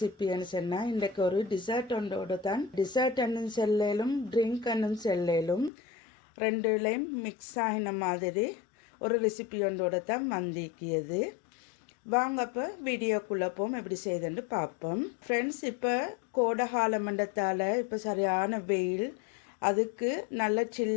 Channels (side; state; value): right; drops out; at 5.7 s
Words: சொன்னால் இன்றைக்கு ஒரு டிசர்ட் ஒன்றோட தான். டிசர்ட் என்னும் செல்லும் ட்ரிங்க் என்னும் செல்லும் ரெண்டுலேயும் மிக்ஸ் ஆகின மாதிரி ஒரு ரெசிபி ஒன்றோட தான் வந்திக்கியது. வாங்க இப்போ வீடியோக்குள்ளே போம் எப்படி செய்யுதுன்னு பார்ப்போம் ஃப்ரெண்ட்ஸ். இப்போ கோடை கால மண்டத்தால் இப்போ சரியான வெயில், அதுக்கு நல்ல